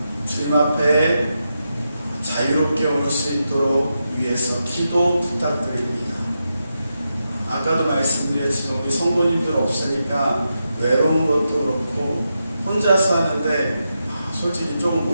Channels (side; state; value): both; inverted; correlation -0.87